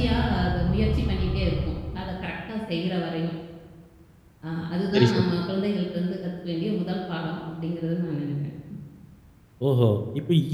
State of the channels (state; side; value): identical; both; correlation 1.00